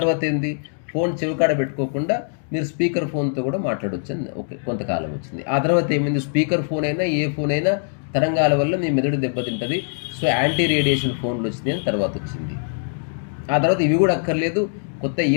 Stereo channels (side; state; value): right; silent; digital silence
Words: ఏంది, ఫోన్ చెవికాడ పెట్టుకోకుండా మీరు స్పీకర్ ఫోన్తో కూడా మాట్లాడవచ్చు అని కొంతకాలం వచ్చింది. ఆ తర్వాత ఏమైంది, స్పీకర్ ఫోన్ అయినా ఏ ఫోన్ అయినా తరంగాల వల్ల మీ మెదడు దెబ్బతింటుంది, సో యాంటీ రేడియేషన్ ఫోన్లు వచ్చినాయి అని తర్వాత వచ్చింది. ఆ తర్వాత ఇవి కూడా అక్కర్లేదు, కొత్త